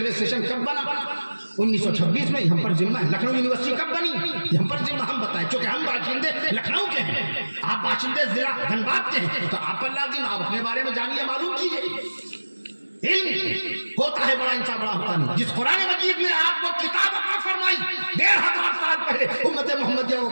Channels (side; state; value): both; inverted; correlation -1.00